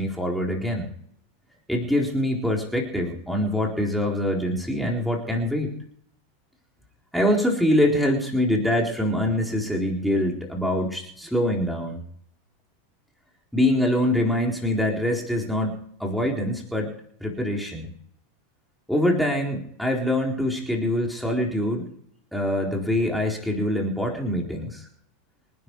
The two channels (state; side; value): normal; both; correlation 0.51